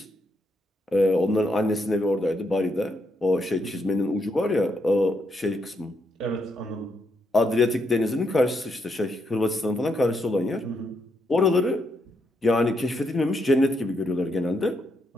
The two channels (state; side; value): normal; both; correlation 0.78